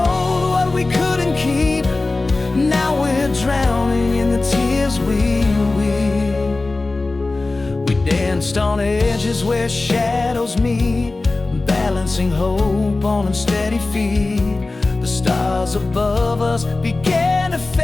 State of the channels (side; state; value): right; quieter; 3.3 dB